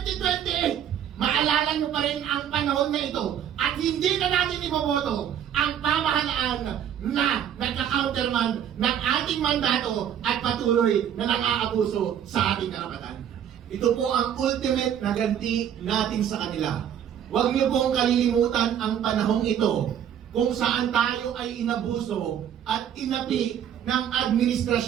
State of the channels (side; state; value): left; quieter; 9.5 dB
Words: maalala niyo pa rin ang panahon na ito at hindi na natin iboboto ang pamahalaan na nagka-counterman ng ating mandato at patuloy na nang-aabuso sa ating karapatan. Ito po ang ultimate na ganti natin sa kanila. Huwag niyo pong kalilimutan ang panahong ito kung saan tayo ay inabuso at inapi ng